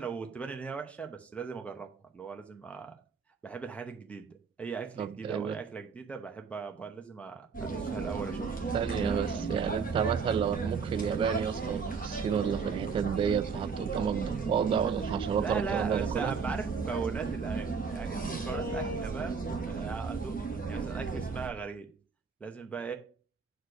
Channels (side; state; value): left; quieter; 5.7 dB